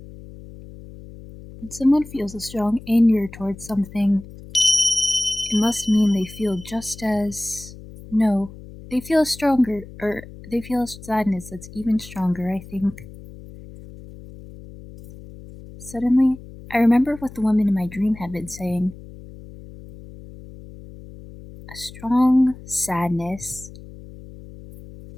When someone feels a strong anger towards something, it must mean they feel just as... No, they feel stronger, or they feel a sadness that's even stronger, I think. Suddenly, I remember what the woman in my dream had been saying. A strong sadness.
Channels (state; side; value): noise; left; hum, 17 dB below the sound